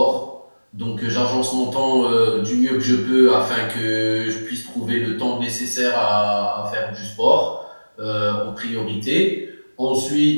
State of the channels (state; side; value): inverted; both; correlation -1.00